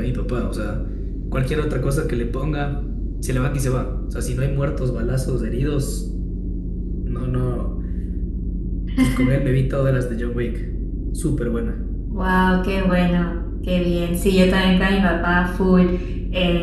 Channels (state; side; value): identical; both; correlation 1.00